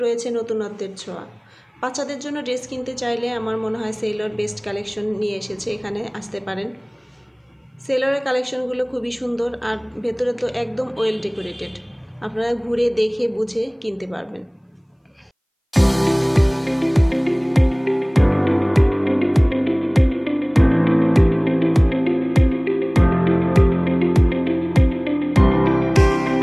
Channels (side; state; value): both; identical; correlation 1.00